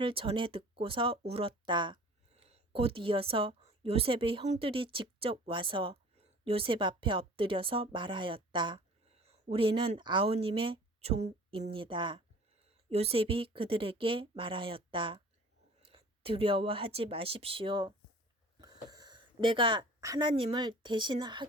전해 듣고서 울었다. 곧 이어서 요셉의 형들이 직접 와서 요셉 앞에 엎드려서 말하였다. 우리는 아우님의 종입니다. 요셉이 그들에게 말하였다. 두려워하지 마십시오. 내가 하나님을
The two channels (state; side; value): normal; both; correlation 0.46